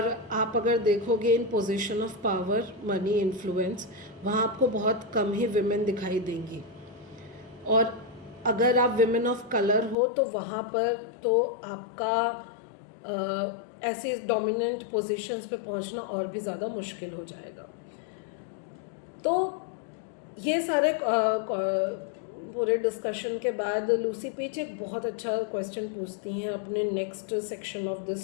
आप अगर देखोगे इन position of power, money, influence, वहाँ आपको बहुत कम ही विमेन दिखाई देंगी. और अगर आप विमेन ऑफ कलर हो तो वहाँ पर तो आपका ऐसी डोमिनेंट पोजीशंस पे पहुँचना और भी ज़्यादा मुश्किल हो जाएगा. तो ये सारे पूरे डिस्कशन के बाद लूसी पीच एक बहुत अच्छा क्वेश्चन पूछती हैं अपने next section of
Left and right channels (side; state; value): right; drops out; at 10.0 s